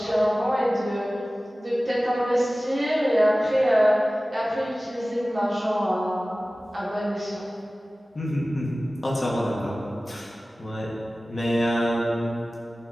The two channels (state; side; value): normal; both; correlation 0.97